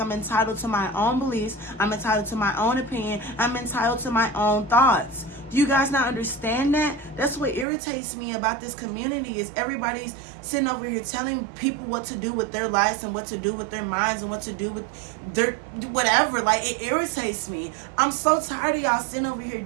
entitled to my own beliefs. I'm entitled to my own opinion. I'm entitled to my own thoughts. Do you guys not understand that? That's what irritates me about this community, is everybody's sitting over here telling people what to do with their lives and what to do with their minds and what to do with their whatever. Like, it irritates me. I'm so tired of y'all sitting over here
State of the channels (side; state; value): left; drops out; at 7.7 s